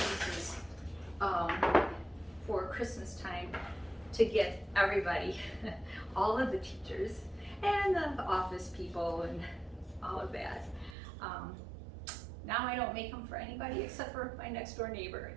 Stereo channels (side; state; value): left; drops out; at 11.0 s